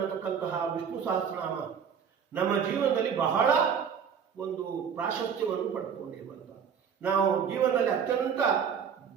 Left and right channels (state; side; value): quieter; left; 7.2 dB